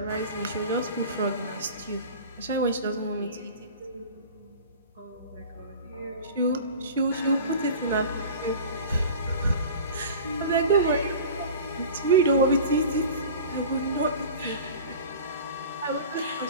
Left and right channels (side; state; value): both; inverted; correlation -0.37